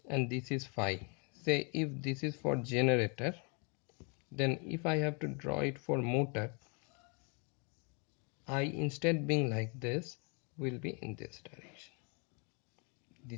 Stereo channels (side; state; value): right; quieter; 35.3 dB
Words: and this is phi. Say if this is for generator, then if I have to draw it for motor, I, instead being like this, will be in this direction.